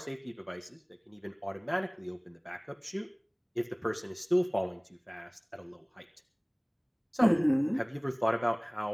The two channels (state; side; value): identical; both; correlation 1.00